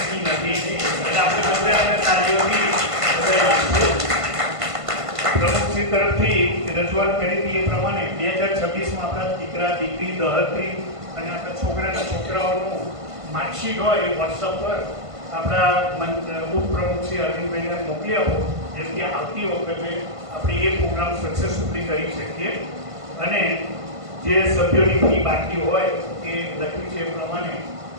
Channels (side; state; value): left; late; 1.5 ms